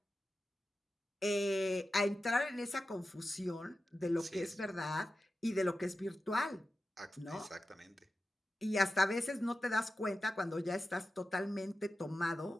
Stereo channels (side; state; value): both; normal; correlation 0.93